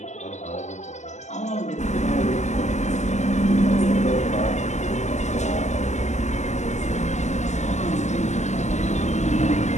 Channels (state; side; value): late; right; 0.33 ms